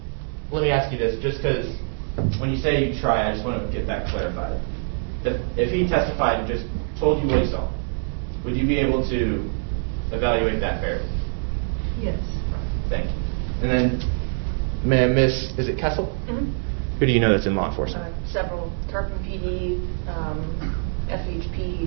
let me ask you this, just because when you say you try, I just want to get that clarified. If he testified and just told you what he saw, would you be able to evaluate that fairly? Yes. Thank you. And then, ma'am, Miss, is it Kessel? Mm-hmm. Who do you know that's in law enforcement? Several, Tarpon PD,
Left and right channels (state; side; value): silent; left; 57 dB below the other